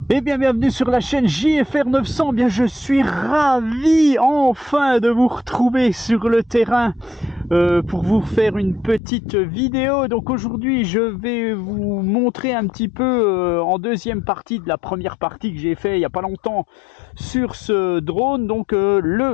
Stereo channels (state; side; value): drops out; right; at 9.0 s